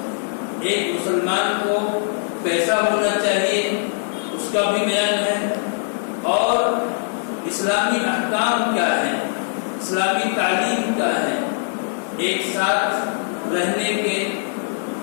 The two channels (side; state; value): right; silent; digital silence